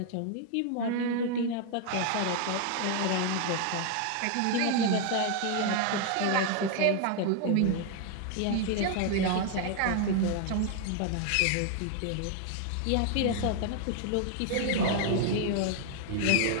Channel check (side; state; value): both; different; correlation 0.00